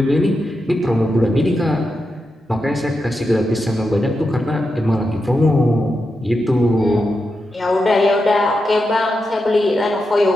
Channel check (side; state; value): both; normal; correlation 0.87